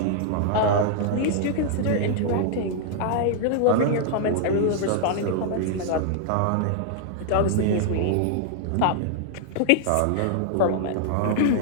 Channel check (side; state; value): both; different; correlation -0.01